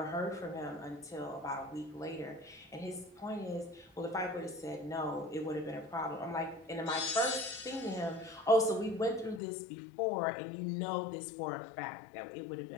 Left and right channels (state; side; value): drops out; right; at 9.4 s